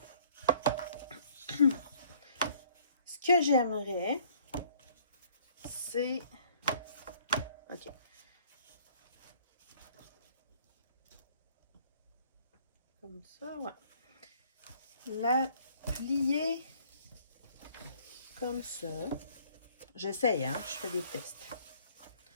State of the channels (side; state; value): both; inverted; correlation -0.58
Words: Ce que j'aimerais, c'est... OK. Comme ça, ouais. La plier comme ça. J'essaye, hein? Je fais des tests.